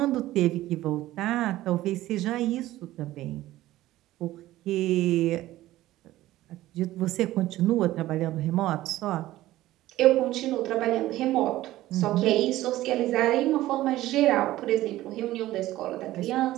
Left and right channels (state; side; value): quieter; left; 15.7 dB